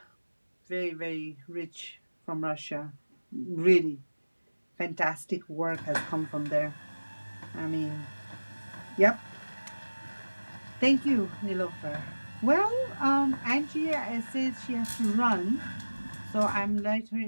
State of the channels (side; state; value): both; inverted; correlation -1.00